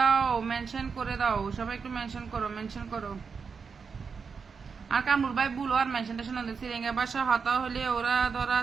মেনশন করে দাও, সবাই একটু মেনশন করো, মেনশন করো। আর কামরুল ভাই বলো আর মেনশন টেনশন সিরিঙ্গের ভাষা হতা হলে ওরা ধরা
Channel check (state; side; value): quieter; left; 5.6 dB